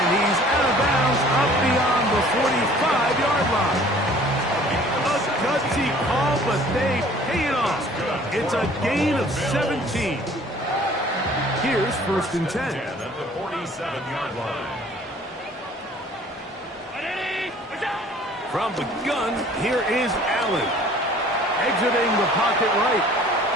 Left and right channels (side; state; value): both; normal; correlation 0.52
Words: he's out of bounds up beyond the 45-yard line. A gutsy call, but they pay it off. It's a gain of 17. Here's 1st and 10. At the 47-yard line. From the gun, here is Allen. Exiting the pocket right.